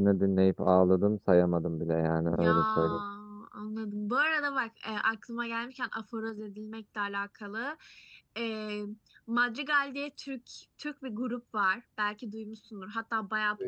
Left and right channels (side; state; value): both; identical; correlation 1.00